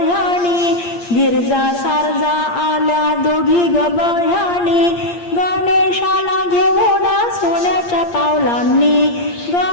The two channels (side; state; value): right; late; 8.6 ms